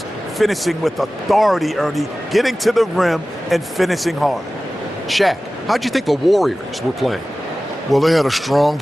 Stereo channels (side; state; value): both; normal; correlation 0.96